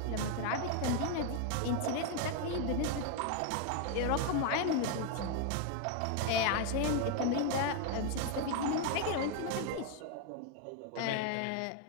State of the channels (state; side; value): different; both; correlation 0.01